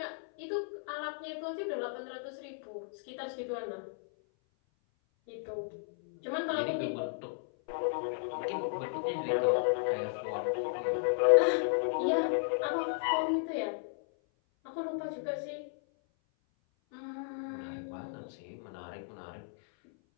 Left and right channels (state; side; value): silent; right; 55 dB below the other